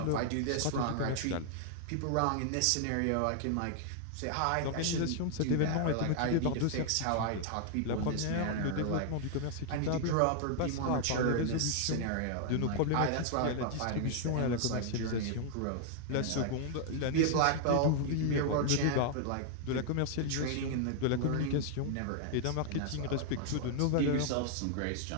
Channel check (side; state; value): both; different; correlation 0.00